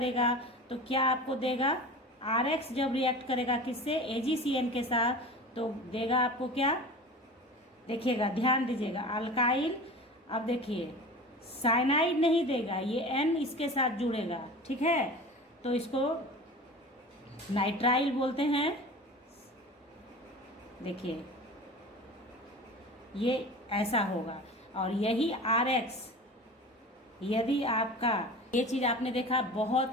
तो क्या आपको देगा, RX जब रिएक्ट करेगा किससे, AgCN के साथ, तो देगा आपको क्या, देखिएगा ध्यान दीजिएगा, अल्काइल। अब देखिए साइनाइड नहीं देगा, ये N इसके साथ जुड़ेगा, ठीक है, तो इसको नाइट्राइल बोलते हैं। देखिए ये ऐसा होगा। और यही RX, यदि आपका ये चीज़ आपने देखा, बहुत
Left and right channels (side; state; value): both; normal; correlation 0.35